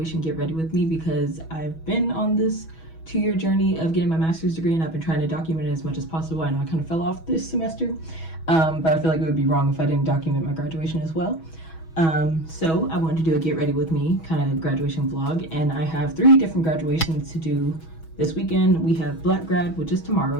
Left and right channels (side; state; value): right; late; 6.2 ms